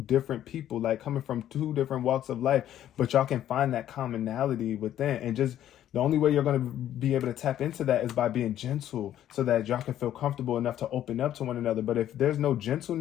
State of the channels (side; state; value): right; quieter; 11.6 dB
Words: different people, like coming from two different walks of life, but y'all can find that commonality within. And just the only way you're going to be able to tap into that is by being gentle, so that y'all can feel comfortable enough to open up to one another. But if there's no